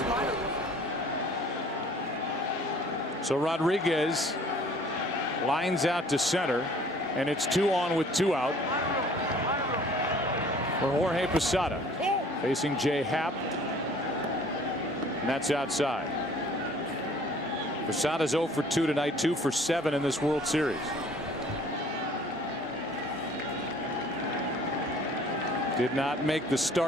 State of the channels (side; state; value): both; normal; correlation 0.53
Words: So Rodriguez lines out to center, and it's 2 on with 2 out for Jorge Posada, facing Jay Happ, and that's outside. Posada's 0 for 2 tonight, 2 for 7 in this World Series. Did not make the